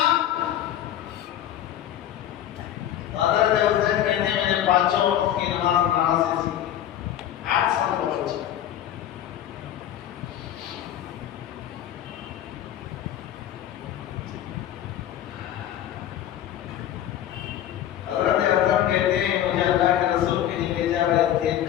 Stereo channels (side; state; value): right; quieter; 11.4 dB